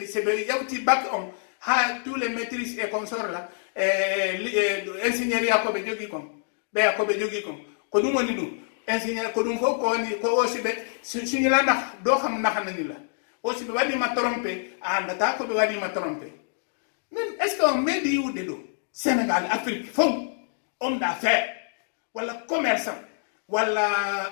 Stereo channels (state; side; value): silent; right; digital silence